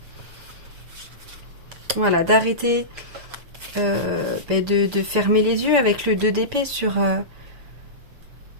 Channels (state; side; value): late; left; 6.9 ms